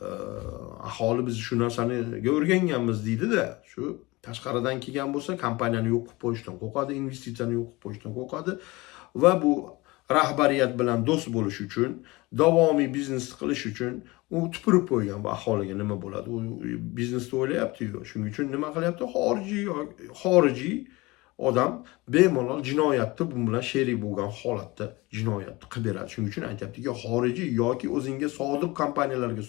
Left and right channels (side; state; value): right; quieter; 22.4 dB